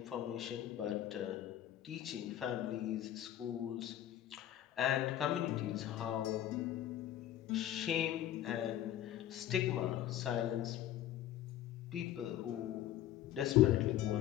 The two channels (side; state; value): right; quieter; 12.2 dB